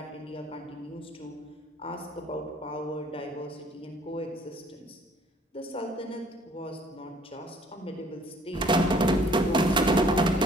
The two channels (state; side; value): normal; both; correlation 0.58